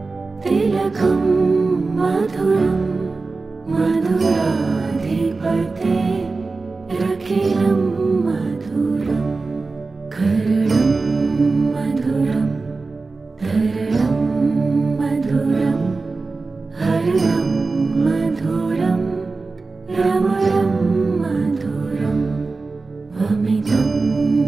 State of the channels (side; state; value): left; quieter; 3.9 dB